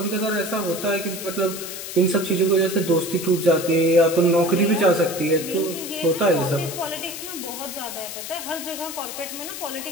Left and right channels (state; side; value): noise; left; hiss, 8 dB below the sound